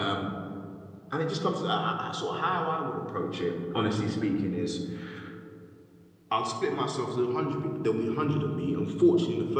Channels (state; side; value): identical; both; correlation 1.00